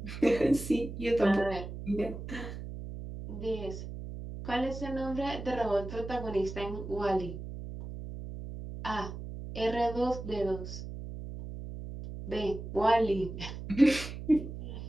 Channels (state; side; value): noise; right; hum, 9 dB below the sound